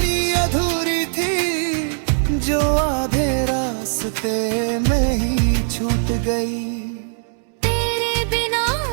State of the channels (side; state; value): left; silent; 65 dB below the other